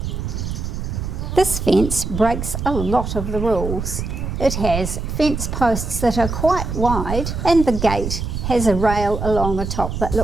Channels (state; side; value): noise; right; rumble, 4 dB below the sound